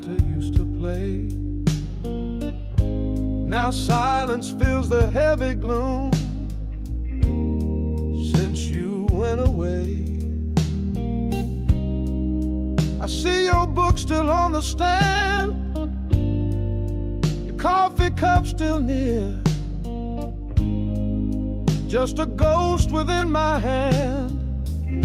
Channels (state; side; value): identical; both; correlation 1.00